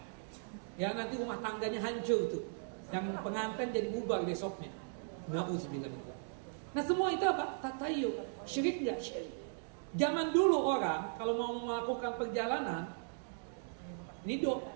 Ya nanti rumah tangganya hancur tuh. Yang pengantin jadi bubar besoknya. Nauzubillah min dzalik. Nah semua itu apa? Tatayyu. Syirik nggak? Syirik. Zaman dulu orang kalau mau melakukan perjalanan,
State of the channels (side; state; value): left; silent; digital silence